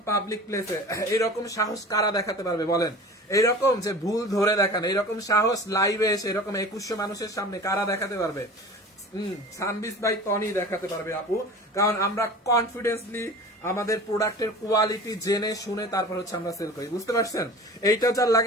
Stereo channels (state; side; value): normal; both; correlation 0.38